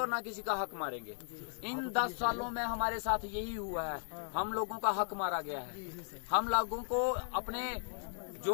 ना किसी का हक मारेंगे। इन 10 सालों में हमारे साथ यही हुआ है, हम लोगों का हक मारा गया है, हम लोगों को अपने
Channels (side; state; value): right; silent; 53 dB below the other